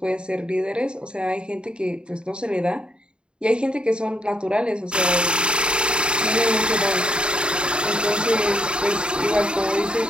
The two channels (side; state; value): left; late; 0.052 ms